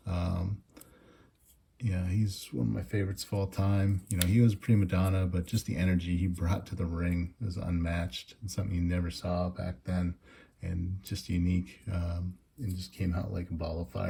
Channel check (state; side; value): identical; both; correlation 1.00